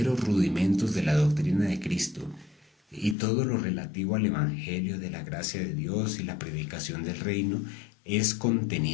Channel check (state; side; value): drops out; right; at 3.2 s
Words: rudimentos de la doctrina de Cristo, y todo lo relativo al Evangelio de la gracia de Dios y la predicación del reino es